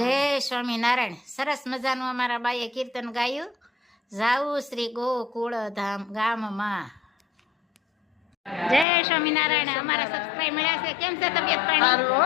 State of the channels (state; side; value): drops out; right; at 8.8 s